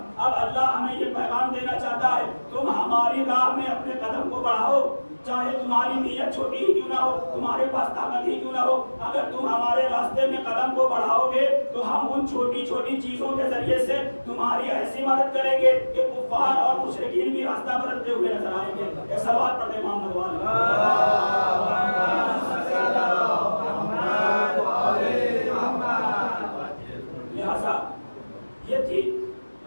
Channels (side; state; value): both; inverted; correlation -1.00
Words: اب اللہ ہمیں یہ پیغام دینا چاہتا ہے تم ہماری راہ میں اپنے قدم کو بڑھاؤ، چاہے تمہاری نیت چھوٹی ہی کیوں نہ ہو، تمہارے پاس طاقت ہی کیوں نہ ہو، اگر تم ہمارے راستے میں قدم کو بڑھاؤ گے تو ہم ان چھوٹی چھوٹی چیزوں کے ذریعے سے تمہاری ایسی مدد کریں گے کہ کفار اور مشرکین بھی راستہ بدلتے ہوئے نظر آئیں گے۔ ایک سوال پڑھ دیں محمد لہذا یہ تھی